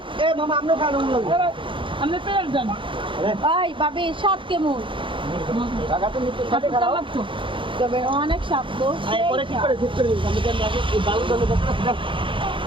এ মামা আপনি খান আমি পেয়ে যান এই ভাবি স্বাদ কেমন? লাগতো তবে অনেক স্বাদ তো। পরে ঠিক করে ঠিক করে দিন আমি জানি আগে এই বালু জলে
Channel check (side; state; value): left; late; 0.25 ms